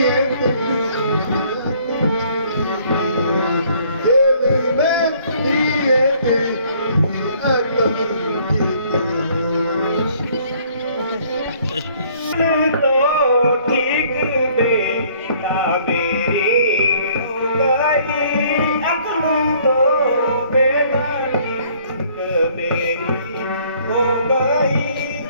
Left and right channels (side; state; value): both; inverted; correlation -0.60